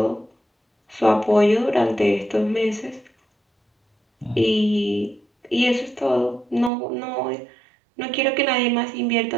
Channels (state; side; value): drops out; left; at 6.7 s